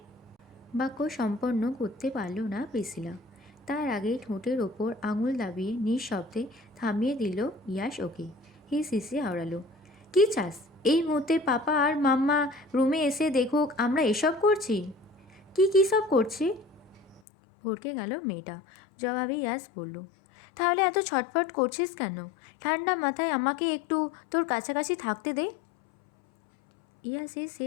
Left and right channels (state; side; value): drops out; right; at 17.2 s